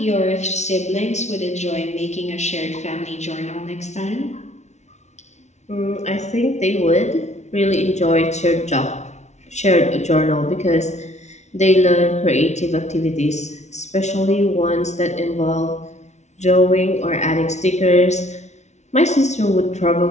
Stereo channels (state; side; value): late; right; 0.32 ms